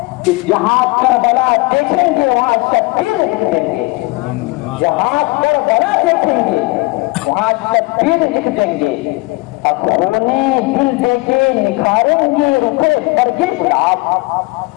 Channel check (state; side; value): quieter; right; 24.1 dB